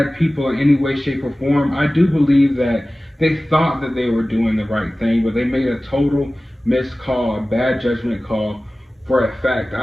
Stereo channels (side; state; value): both; normal; correlation 0.97